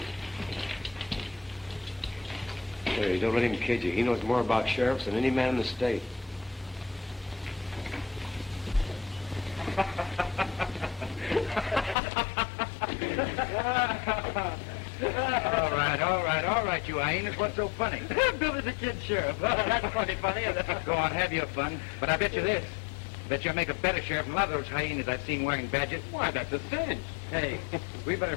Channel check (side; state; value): right; drops out; at 12.0 s